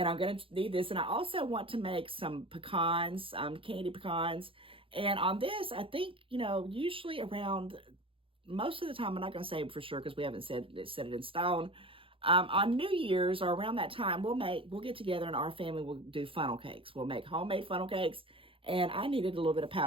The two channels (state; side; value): late; left; 0.26 ms